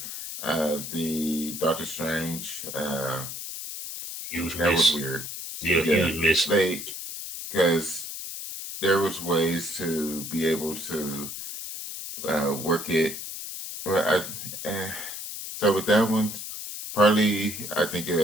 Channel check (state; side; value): noise; left; hiss, 8 dB below the sound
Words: The Doctor Strange, Huge that was miss. weird. Yeah, Yeah, huge miss. like because there was ways to be able to work it. Well, so with that one, partly I think